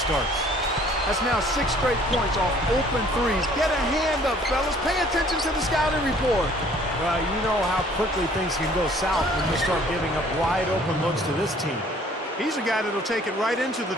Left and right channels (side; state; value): both; normal; correlation 0.56